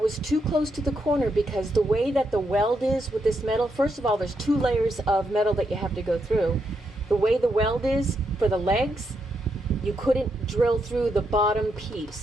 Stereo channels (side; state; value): both; normal; correlation 0.81